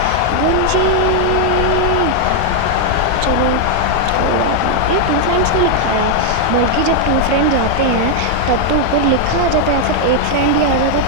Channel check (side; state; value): both; different; correlation 0.00